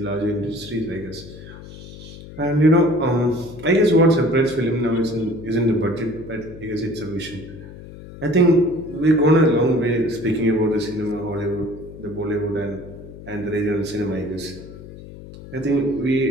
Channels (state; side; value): noise; left; hum, 15 dB below the sound